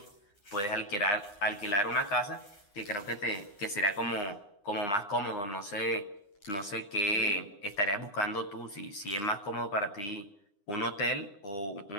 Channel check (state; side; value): late; right; 9.7 ms